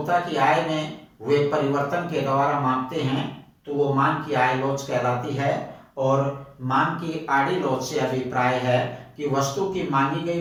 की आय में हुए परिवर्तन के द्वारा मापते हैं तो वो मांग की आय लॉज कहलाती है। और मांग की आड़ी लॉज से अभिप्राय है कि वस्तु की मांगी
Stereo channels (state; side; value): identical; both; correlation 1.00